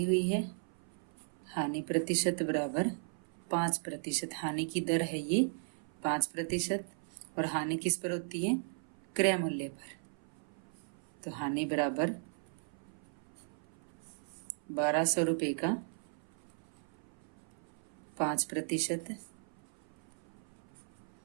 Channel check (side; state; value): left; silent; 53 dB below the other